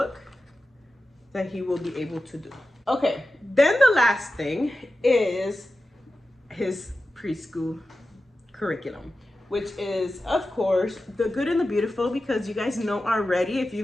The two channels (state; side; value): normal; both; correlation 0.93